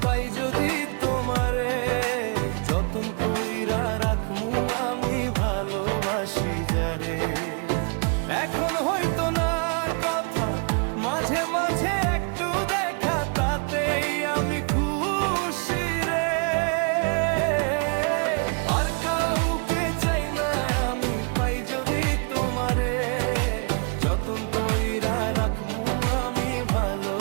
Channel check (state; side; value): quieter; left; 37.6 dB